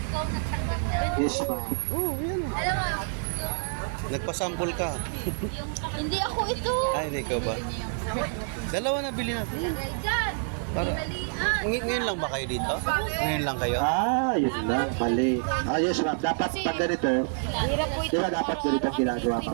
Ikaw nagtanggap. Yes, ma'am. Oh, yan. Alam mo, Nagpasample ka. hindi ako ito. Ay, hindi ka ba? Dalawa na bili natin. Lagay dyan. Para- Hinalian. Ngayon lang ba kayo dito? Ngayon lang kayo? Yun lang. Mali. Yes, ma'am. Dapat pag ganito, Hirap po di ba dapat ganito ang ginagawa,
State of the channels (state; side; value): silent; left; 60 dB below the other